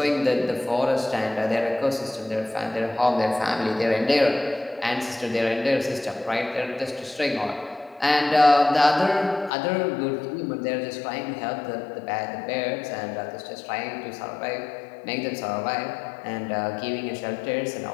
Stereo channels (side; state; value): right; drops out; at 9.5 s